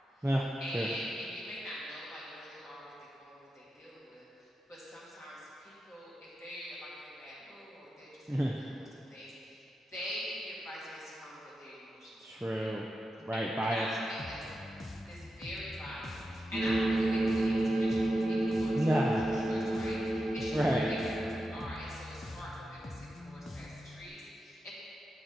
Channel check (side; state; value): both; normal; correlation 0.89